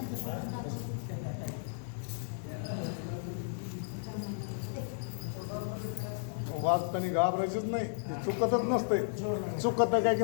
वाचताना घाबरायचंच नाही, चुकतच नसतंय. चुकत काय की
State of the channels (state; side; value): silent; right; 55 dB below the other